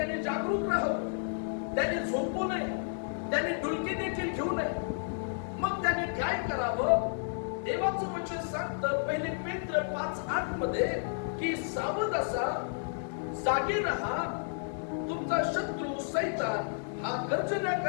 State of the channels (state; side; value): silent; right; digital silence